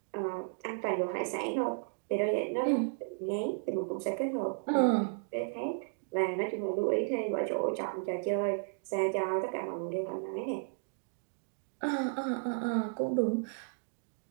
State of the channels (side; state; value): left; silent; digital silence